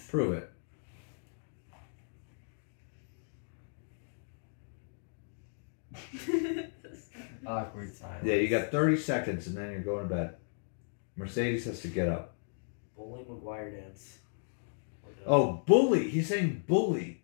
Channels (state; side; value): silent; right; digital silence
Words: Prove it. Awkward silence. Yeah, you got 30 seconds and then you're going to bed. Mercedes has to get up. Bully McGuire dance. Oh, bully. He's saying bully.